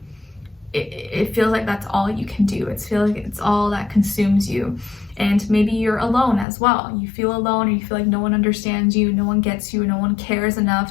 it feels like that's all you can do. It feels like it's all that consumes you. And maybe you're alone as well. You feel alone, or you feel like no one understands you, no one gets you, no one cares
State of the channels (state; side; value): drops out; right; at 6.5 s